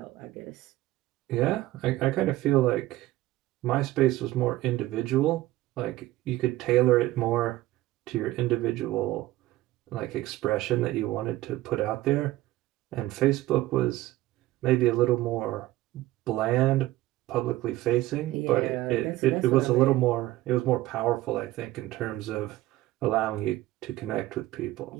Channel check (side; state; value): left; quieter; 16.6 dB